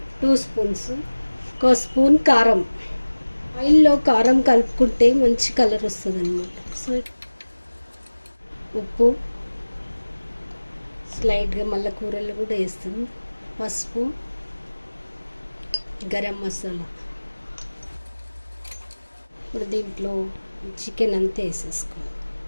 2 స్పూన్స్. 1 స్పూన్ కారం. ఆయిల్లో కారం కలుపుకుంటే మంచి కలర్ వస్తుంది అనమాట. సో ఉప్పు స్లైడ్గా మళ్ళీ కూరల్లో కూడా వేస్తాం. పసుపు, గరం మసాలా. ఇప్పుడు దీంట్లో చికెన్ అంతా వేసేసుకోవాలి.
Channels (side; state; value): both; inverted; correlation -1.00